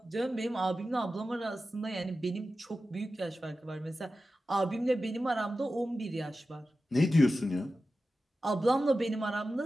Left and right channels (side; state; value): both; normal; correlation 0.93